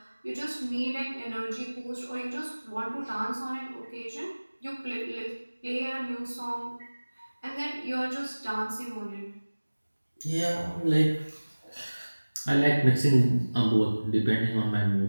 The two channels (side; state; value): both; inverted; correlation -1.00